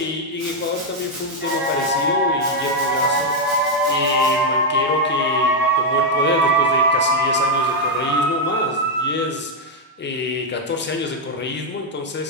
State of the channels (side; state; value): both; normal; correlation 0.01